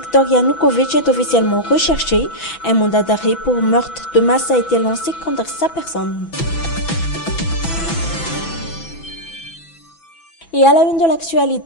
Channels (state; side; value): late; right; 6.0 ms